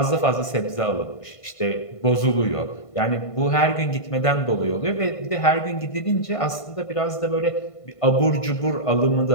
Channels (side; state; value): right; late; 1.5 ms